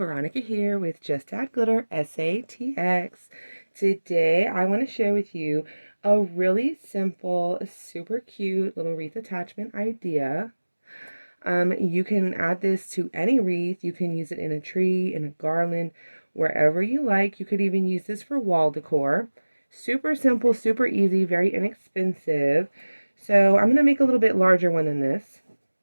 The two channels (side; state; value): both; inverted; correlation -1.00